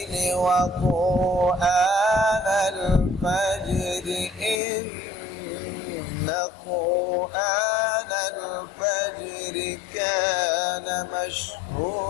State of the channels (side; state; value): right; drops out; at 4.6 s